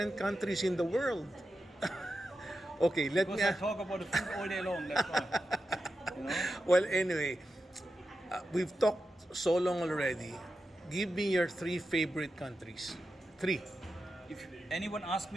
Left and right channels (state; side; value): normal; both; correlation 0.90